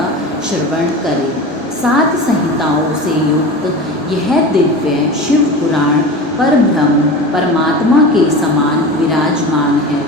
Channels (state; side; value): normal; both; correlation 0.31